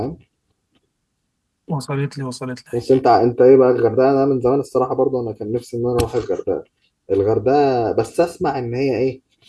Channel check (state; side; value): identical; both; correlation 1.00